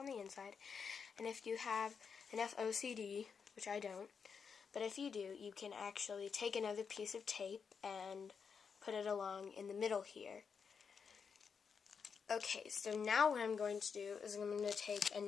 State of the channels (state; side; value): quieter; right; 6.2 dB